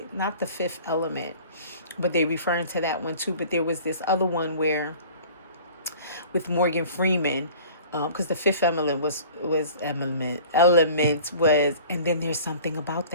not The Fifth Element, but they referring to that one too. But there was this other one where, with Morgan Freeman, because the fifth element was element was, and then there's something about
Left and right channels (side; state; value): both; inverted; correlation -0.46